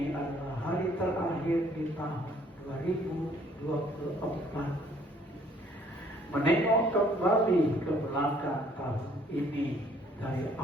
adalah hari terakhir di tahun 2024. Menengok kembali ke belakang tahun ini, dari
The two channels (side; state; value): both; normal; correlation 0.61